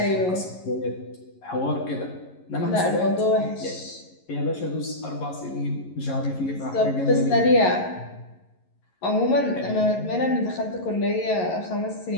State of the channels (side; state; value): right; late; 11 ms